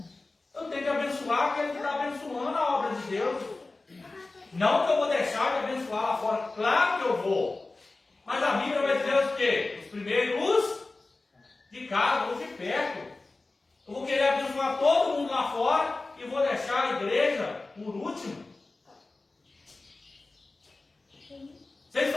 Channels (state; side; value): quieter; right; 3.3 dB